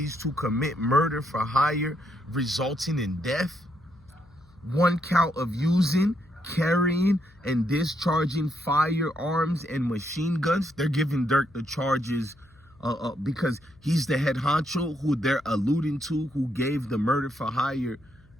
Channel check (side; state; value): left; noise; hum, 28 dB below the sound